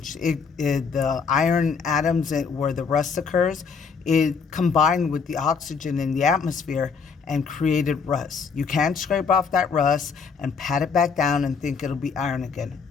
The iron atoms where the rust occurs, it combined with the oxygen in the atmosphere and created rust. You can't scrape off that rust and pat it back down and think it'll be iron again.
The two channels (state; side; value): quieter; right; 5.6 dB